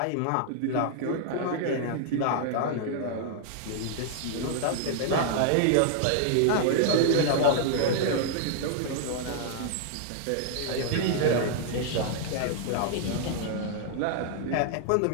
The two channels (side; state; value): both; different; correlation -0.01